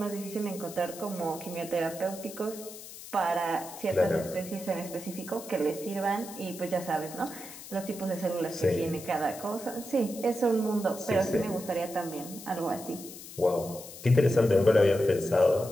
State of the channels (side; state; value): left; noise; hiss, 14 dB below the sound